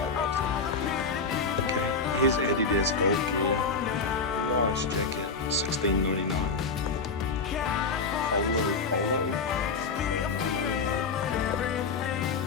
loves it. Okay, here's Adidas golf gear. Nice jacket, $16.99. Polo.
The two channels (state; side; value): quieter; right; 4.4 dB